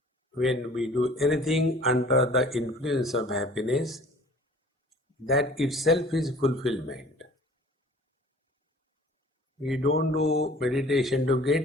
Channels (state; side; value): normal; both; correlation 0.48